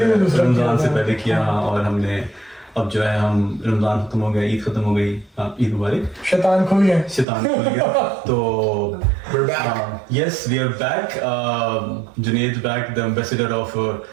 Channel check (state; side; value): drops out; left; at 7.2 s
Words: से पहले किया, और हमने अब जो है हम रमजान खत्म हो गया, ईद खत्म हो गई, ईद मुबारक। शैतान खुल गया तो We're back. yes, we are back. Junaid back, the ambassador of